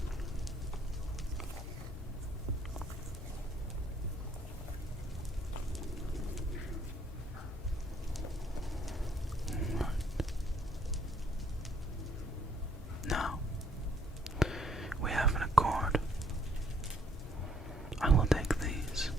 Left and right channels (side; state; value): both; normal; correlation 0.64